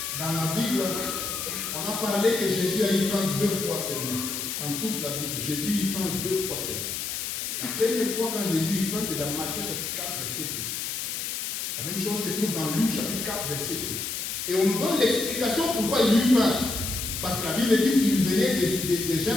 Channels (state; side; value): noise; left; hiss, 4 dB below the sound